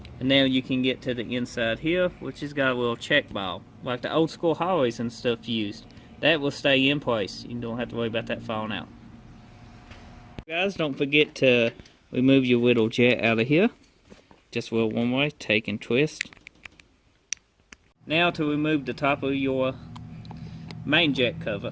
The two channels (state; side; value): identical; both; correlation 1.00